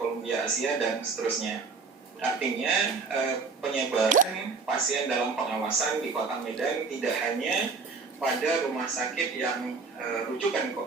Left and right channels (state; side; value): quieter; left; 4.6 dB